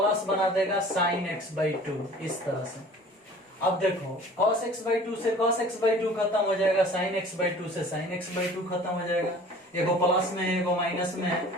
बना देगा साइन x/2, इस तरह से। अब देखो cos x/2 से cos x/2 खत्म हो जाएगा, साइन x/2 से साइन x/2 खत्म हो जाएगा, एगो प्लस में है एगो माइनस में है,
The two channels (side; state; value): both; normal; correlation 0.46